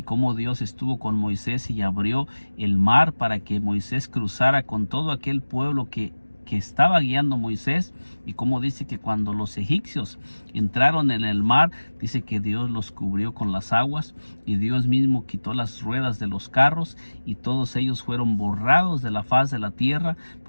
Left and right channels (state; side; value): inverted; both; correlation -1.00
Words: cómo Dios estuvo con Moisés y abrió el mar para que Moisés cruzara con todo aquel pueblo que estaba guiando Moisés. Y como dice que cuando los egipcios entraron en el mar, dice que Dios los cubrió con las aguas, y Dios mismo quitó las ruedas de los carros, y todos ellos fueron borrados de la faz de la tierra,